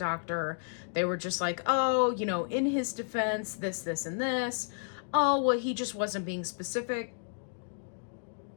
they were just like, oh, you know, in his defense, this, and this. Oh, well, he just wasn't being specific.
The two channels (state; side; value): silent; right; digital silence